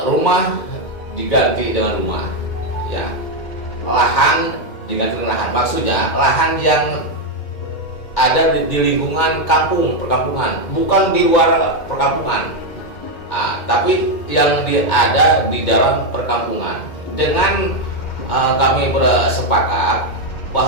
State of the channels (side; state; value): right; late; 2.1 ms